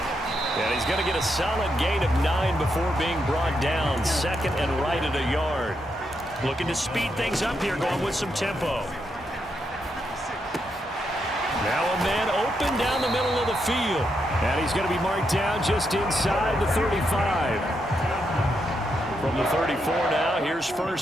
And he's going to get a solid gain of 9 before being brought down. 2nd and right at a yard. Looking to speed things up here, going with some tempo. Now a man open down the middle of the field. And he's going to be marked down just inside the 35. From the 34 now, here's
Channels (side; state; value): both; normal; correlation 0.81